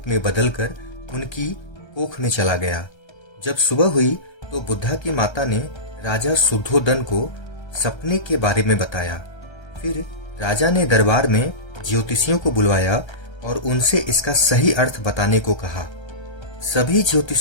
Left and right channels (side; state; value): right; late; 1.3 ms